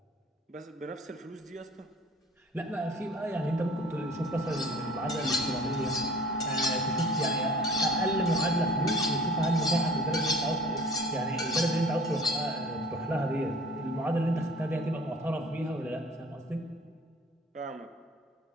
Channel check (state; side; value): normal; both; correlation 0.48